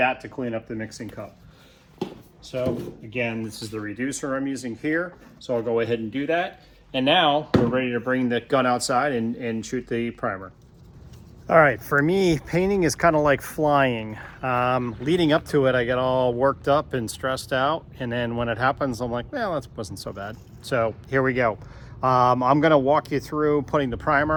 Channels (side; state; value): both; identical; correlation 1.00